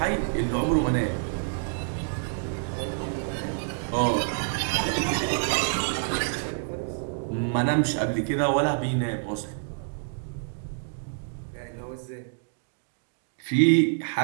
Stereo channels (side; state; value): left; silent; digital silence